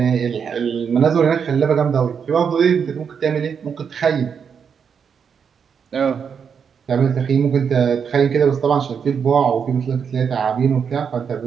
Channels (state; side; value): quieter; left; 6.8 dB